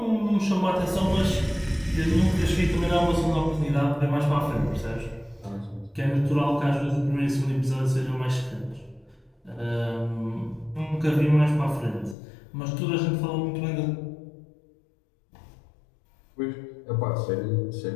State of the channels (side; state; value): right; drops out; at 12.2 s